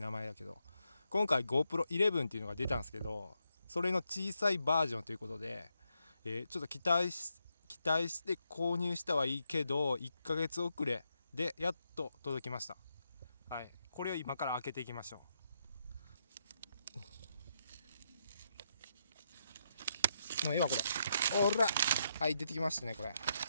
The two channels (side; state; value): both; inverted; correlation -0.81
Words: 名前だけど、今回 GoPro 11っていうのが出たんですけど、それの小さいバージョンということで、ちょっと期待して購入したはいいけど1ヶ月遅れでやっと届きました。はい、これを今から開けていきましょう。もう今これおら、はい、出てきましたね。これ、